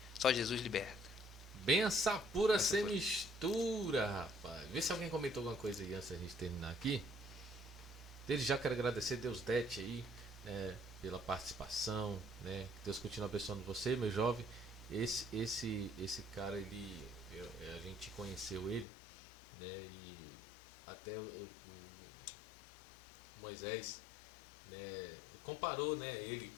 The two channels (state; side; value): drops out; right; at 18.9 s